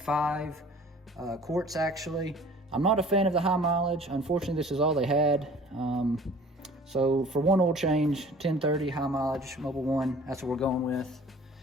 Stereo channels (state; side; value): normal; both; correlation 0.48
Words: quarts actually. I'm not a fan of the high mileage. Unfortunately, this is all they had. So for one oil change, 1030 high mileage, Mobil 1, that's what we're going with.